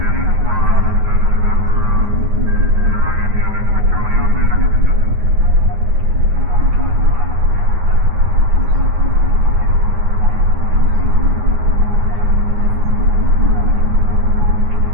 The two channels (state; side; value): late; left; 9.5 ms